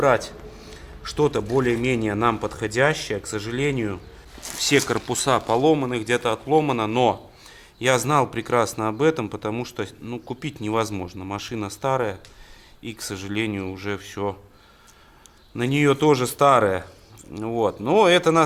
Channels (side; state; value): both; identical; correlation 1.00